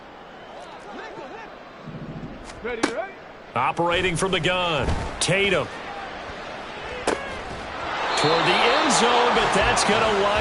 Ready, ready? Operating from the gun. Tatum. Toward the end zone, but that's going to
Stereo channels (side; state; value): both; identical; correlation 1.00